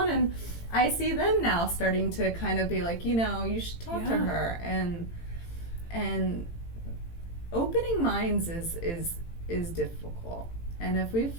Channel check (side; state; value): right; late; 18 ms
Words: and I see them now starting to kind of be like, you know, you should talk to her, and opening minds is difficult. And if we've